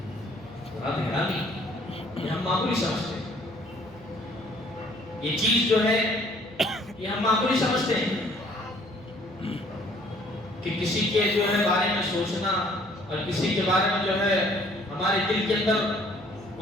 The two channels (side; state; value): right; noise; hum, 21 dB below the sound